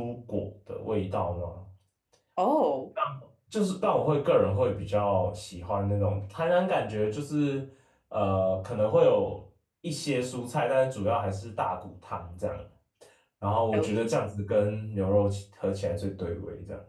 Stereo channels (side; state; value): both; identical; correlation 1.00